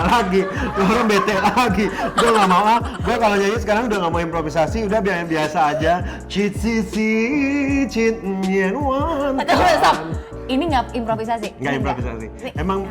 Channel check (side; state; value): both; identical; correlation 1.00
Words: lagi, orang bete lagi. Gue gak mau gue kalau nyanyi sekarang udah gak mau improvisasi, udah biasa aja. Cheat cheat nyen wan. Stop. Ini nggak improvisasi? Nggak improvisasi. Emang